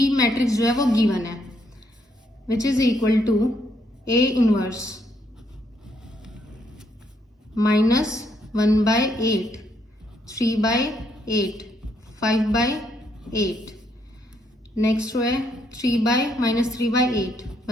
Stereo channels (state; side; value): normal; both; correlation 0.73